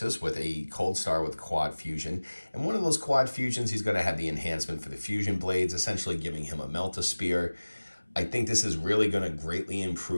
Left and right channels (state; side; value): inverted; both; correlation -1.00